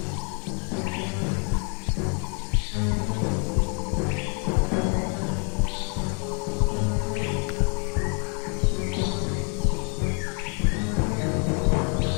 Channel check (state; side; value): quieter; right; 38.1 dB